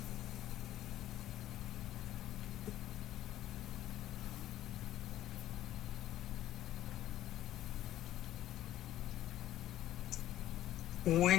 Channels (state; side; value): quieter; right; 13.3 dB